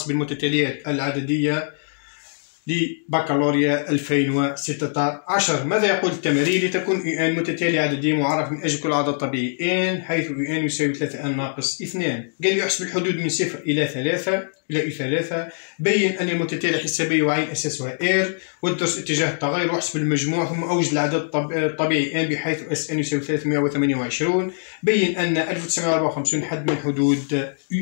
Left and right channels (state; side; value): silent; right; digital silence